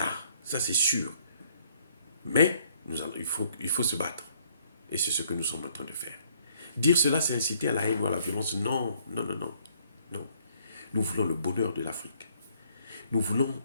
Ça c'est sûr. Mais il faut se battre. Et c'est ce que nous sommes en train de faire. Dire cela, c'est inciter à la haine ou à la violence. Non, non, non, non. Non. Nous voulons le bonheur de l'Afrique. Nous voulons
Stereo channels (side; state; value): both; inverted; correlation -0.65